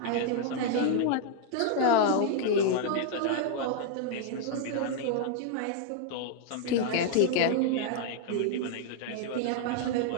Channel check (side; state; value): both; different; correlation 0.00